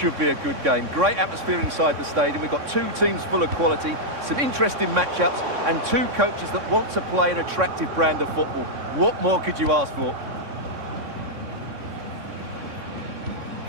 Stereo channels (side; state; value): left; late; 3.6 ms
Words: be a good game. Great atmosphere inside the stadium. We've got two teams full of quality, some interesting matchups, and two coaches that want to play an attractive brand of football. What more could you ask for?